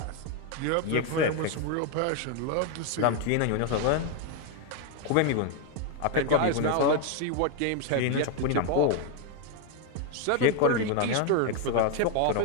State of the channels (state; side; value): different; both; correlation 0.01